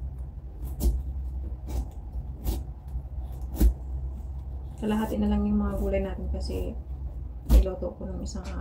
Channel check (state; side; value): identical; both; correlation 1.00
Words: Kalahati na lang yung mga gulay natin kasi niloto ko ng isang